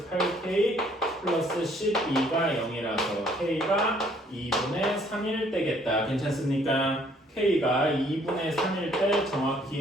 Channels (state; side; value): normal; both; correlation 0.63